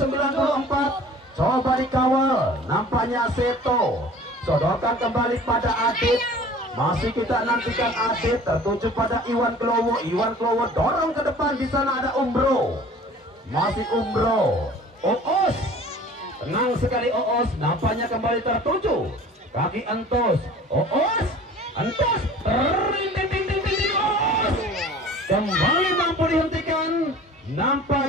Coba dikawal. Nampaknya Seto. Sodorkan kembali pada Adit. Masih kita nantikan Adit. Tertuju pada Iwan Kelowo. Iwan Kelowo dorong ke depan. Di sana ada Umbro. Masih Umbro. Oos. Tenang sekali Oos. Nampaknya kembali tertuju kaki Entos. Oos. Entos. Kembali mampu dihentikan.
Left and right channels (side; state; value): both; normal; correlation 0.45